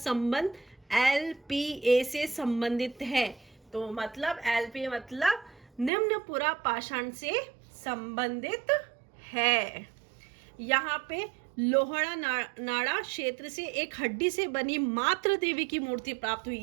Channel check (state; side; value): drops out; left; at 5.9 s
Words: एलपीए से संबंधित है। तो मतलब एलपीए मतलब निम्न पूरा पाषाण से संबंधित है। यहाँ पे लोहड़ा नाड़ा क्षेत्र से एक हड्डी से बनी मातृ देवी की मूर्ति प्राप्त हुई